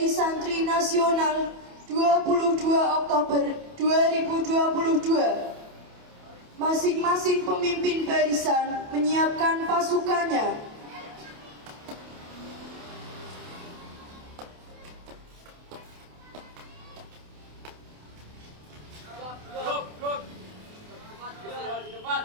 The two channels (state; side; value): late; left; 28 ms